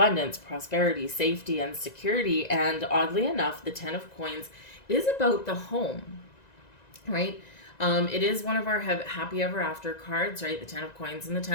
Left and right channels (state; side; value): late; right; 1.9 ms